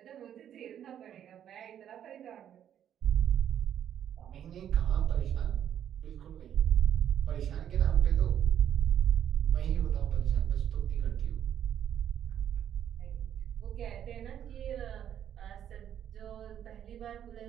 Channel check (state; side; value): quieter; left; 9.9 dB